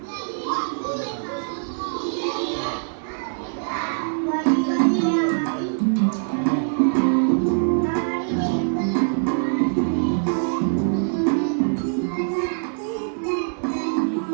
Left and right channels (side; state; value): left; silent; digital silence